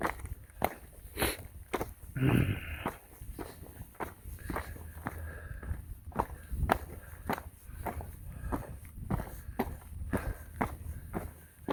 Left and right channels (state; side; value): identical; both; correlation 1.00